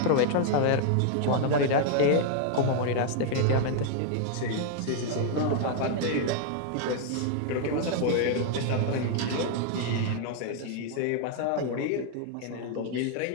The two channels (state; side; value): different; both; correlation 0.00